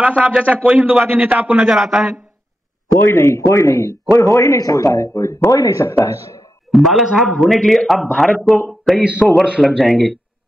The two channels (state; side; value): normal; both; correlation 0.88